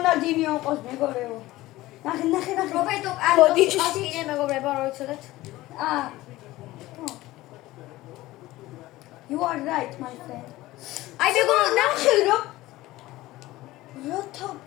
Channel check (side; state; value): right; quieter; 17.6 dB